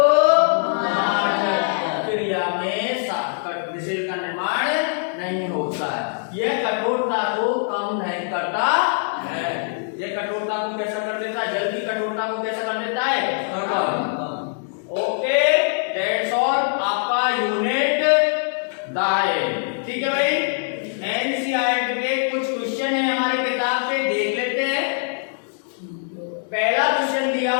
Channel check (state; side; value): silent; right; digital silence